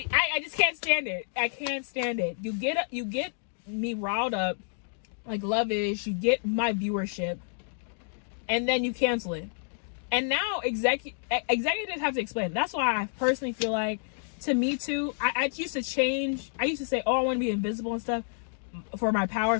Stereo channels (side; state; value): right; silent; digital silence